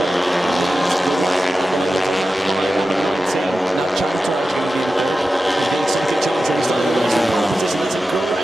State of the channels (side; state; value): both; normal; correlation 0.93